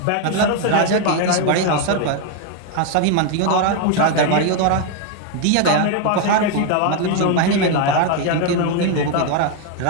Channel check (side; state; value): both; different; correlation 0.01